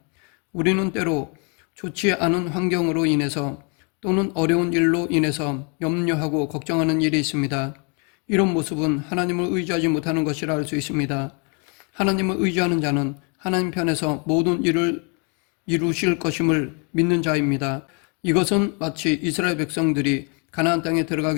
우리는 때로 좋지 않은 환경으로 인해서 또는 어려운 일로 인해서 염려하고 걱정하는 일이 있습니다. 이런 모습은 하나님을 의지하지 못하는 것이라 할 수 있습니다. 하나님을 의지하는 자는 하나님 편에서 모든 일을 이루실 것임을 믿는 자입니다. 이것은 마치 이스라엘 백성들이 가나안 땅에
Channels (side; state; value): right; quieter; 35.8 dB